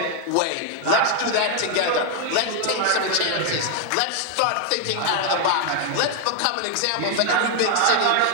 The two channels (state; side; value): different; both; correlation 0.00